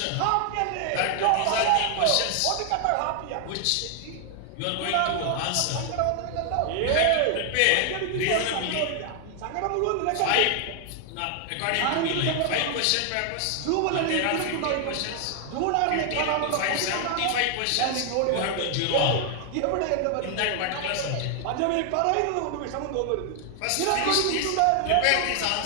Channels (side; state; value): both; different; correlation 0.00